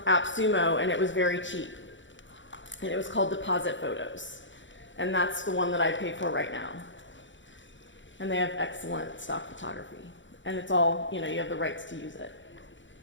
AppSumo, and it was very cheap. And it was called Deposit Photos. And that's the one that I pay for right now. And they have excellent stock photography. And it's all, you have the rights to use it.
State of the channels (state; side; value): late; right; 0.55 ms